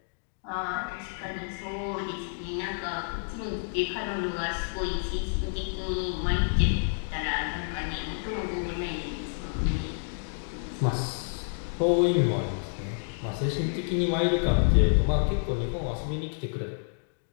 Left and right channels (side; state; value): right; silent; digital silence